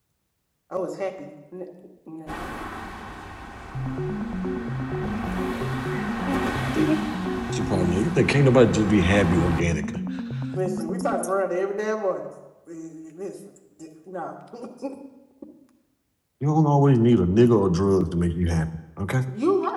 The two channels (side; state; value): both; identical; correlation 1.00